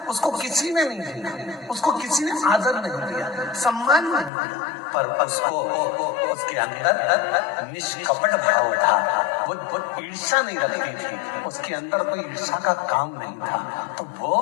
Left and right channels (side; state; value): right; drops out; at 4.3 s